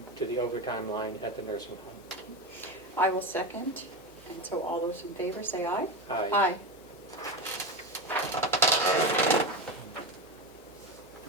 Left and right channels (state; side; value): normal; both; correlation 0.18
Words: to the overtime line at the nursing home. I will second. And so all those in favor say aye. Aye. Aye. Do